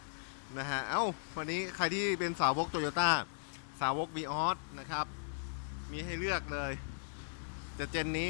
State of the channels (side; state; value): right; silent; digital silence